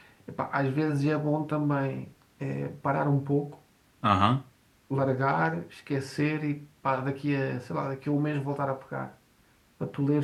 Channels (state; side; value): identical; both; correlation 1.00